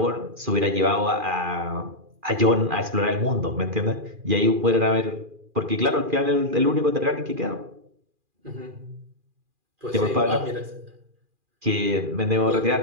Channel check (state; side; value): late; left; 2.4 ms